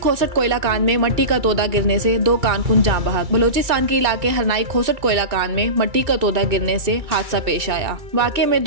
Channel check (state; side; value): late; left; 2.6 ms